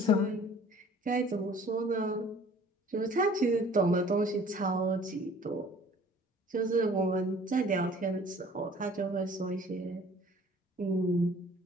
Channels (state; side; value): normal; both; correlation 0.51